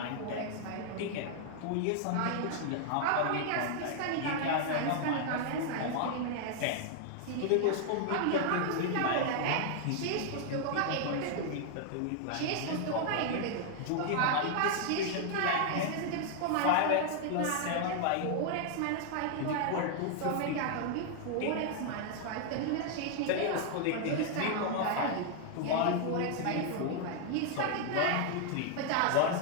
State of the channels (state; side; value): different; both; correlation 0.00